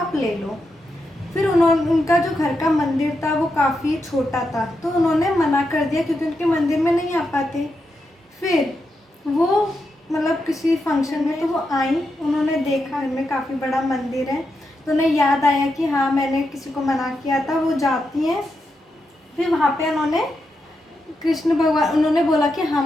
ले लो। फिर उनका जो घर का मंदिर था वो काफ़ी छोटा था, तो उन्होंने मना कर दिया क्योंकि उनके मंदिर में नहीं आ पाते। फिर वो मतलब किसी फंक्शन में तो वो आई, उन्होंने देखा इनमें काफ़ी बड़ा मंदिर है, तो उन्हें याद आया कि हाँ मैंने किसी को मना किया था। वो जाती हैं, फिर वहाँ पे उन्होंने कृष्ण भगवान उन्होंने बोला कि हाँ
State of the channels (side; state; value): both; normal; correlation 0.85